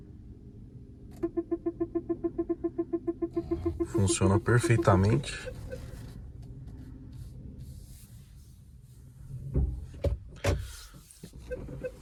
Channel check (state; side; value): identical; both; correlation 1.00